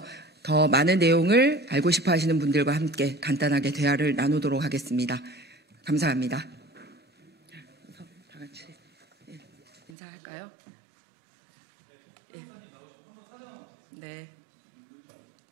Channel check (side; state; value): left; drops out; at 9.9 s